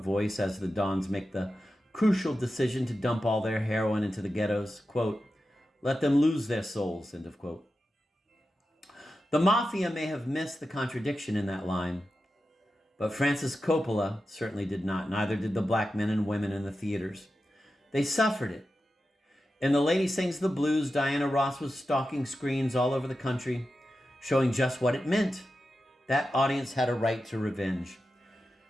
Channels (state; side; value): normal; both; correlation 0.91